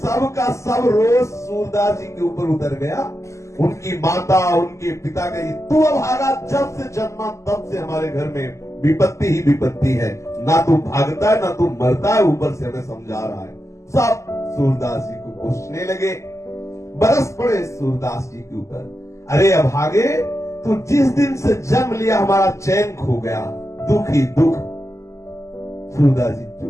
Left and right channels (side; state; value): right; late; 0.14 ms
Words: का सब रोज सूरदास जी के ऊपर उतर गया। उनकी माता, उनके पिता कही, तू अभागा, जब से जन्मा तब से हमारे घर में विपत्ति ही विपत्ति है। ना तू भागता है, ना तू मरता है, ऊपर से हमें समझा रहा है। सब सूरदास जी को पूछने लगे, बरस पड़े सूरदास जी के ऊपर। अरे अभागे, तू जिस दिन से जन्म लिया हमारा चैन खो गया, दुख ही दुख। सूरदास जी